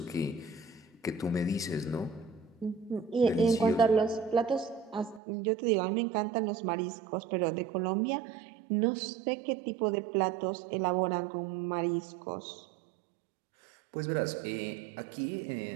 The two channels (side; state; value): left; drops out; at 5.2 s